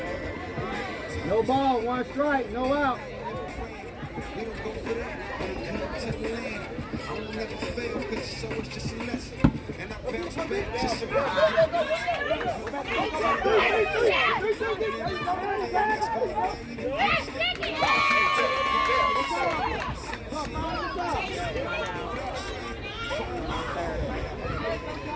No ball, 1 strike, no out.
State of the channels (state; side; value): identical; both; correlation 1.00